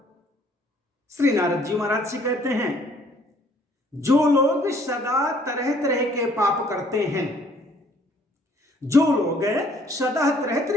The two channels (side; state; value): both; normal; correlation 0.61